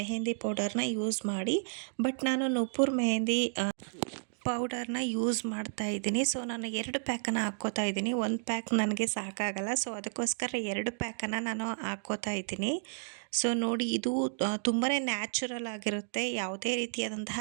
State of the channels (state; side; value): silent; left; digital silence